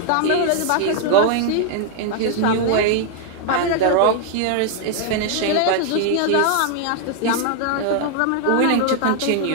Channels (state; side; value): different; both; correlation 0.00